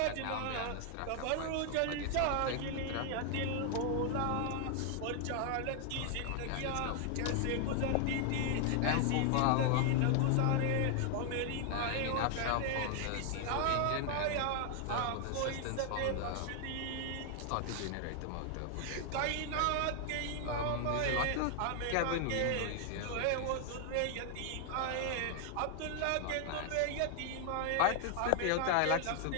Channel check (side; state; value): both; different; correlation 0.00